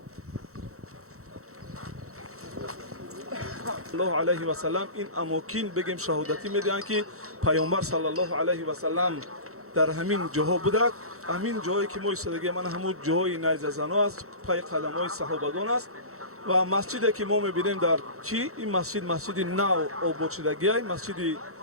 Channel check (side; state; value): left; late; 0.64 ms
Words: الله علیه و سلم این اماکن بگیم شهادتی میدهند که پیامبر صلی الله علیه و سلم در همین جاها بوده. همین جایی که ما ایستادگی من همون جای نیز زنا است، پای قدم های صحابگان است و مسجدی که ما میبینیم در چی این مسجد نو آباد شدگی است. مسجد